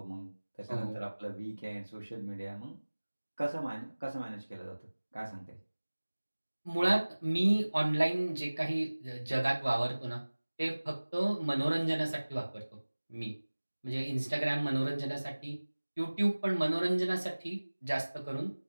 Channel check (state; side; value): inverted; both; correlation -1.00